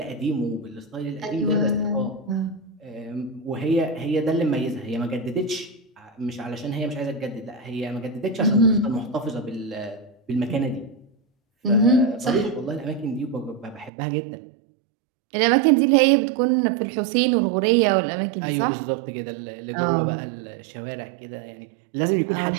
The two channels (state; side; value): drops out; left; at 13.9 s